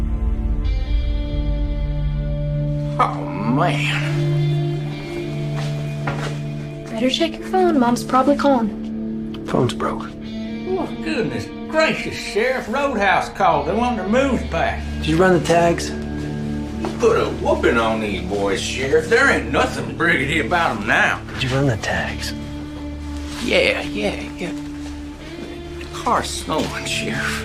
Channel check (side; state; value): both; identical; correlation 1.00